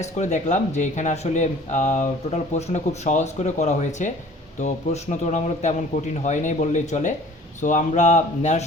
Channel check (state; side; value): normal; both; correlation 0.49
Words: করে দেখলাম যে এখানে আসলে টোটাল প্রশ্নটা খুব সহজ করে করা হয়েছে। তো প্রশ্ন তুলনামূলক তেমন কঠিন হয় নাই বললেই চলে। সো আমরা